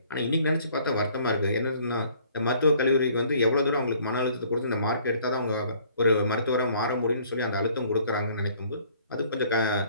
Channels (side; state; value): both; inverted; correlation -0.59